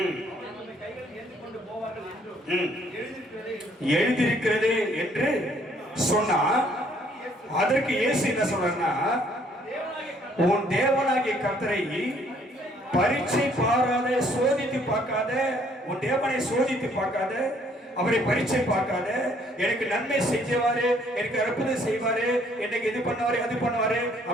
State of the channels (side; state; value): both; normal; correlation 0.63